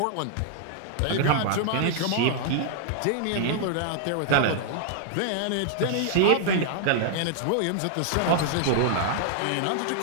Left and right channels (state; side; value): different; both; correlation -0.01